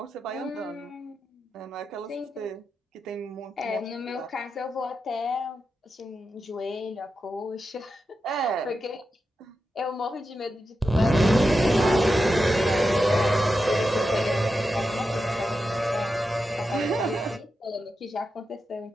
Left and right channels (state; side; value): normal; both; correlation 0.89